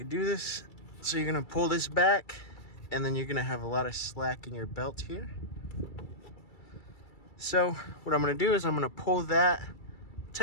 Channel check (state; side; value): late; right; 2.3 ms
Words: do this. So you're going to pull this back, and then you're going to have a lot of slack in your belt here. So what I'm going to do is I'm going to pull that